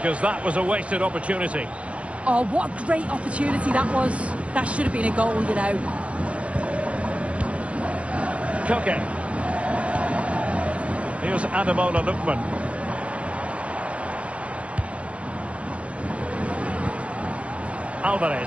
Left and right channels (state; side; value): late; left; 0.062 ms